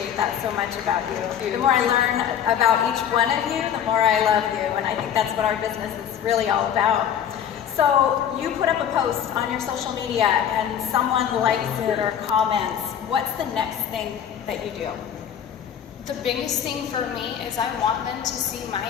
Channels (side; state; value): right; quieter; 9.1 dB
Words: that so much about you. The more I learn about each one of you, the more I love you, and I think that's what our business is really all about. So you put up a post on your social media, and someone likes it or comments. What's the next thing that you do? The biggest thing for me is I want them to see